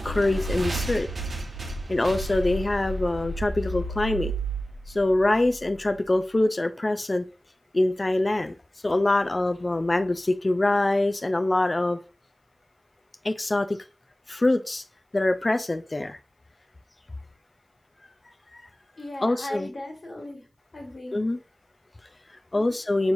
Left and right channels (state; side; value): normal; both; correlation 0.97